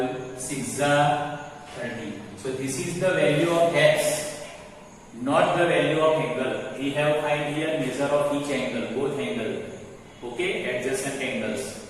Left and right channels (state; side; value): identical; both; correlation 1.00